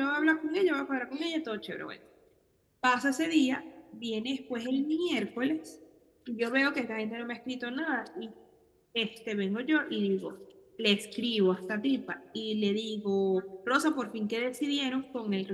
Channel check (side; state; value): both; identical; correlation 1.00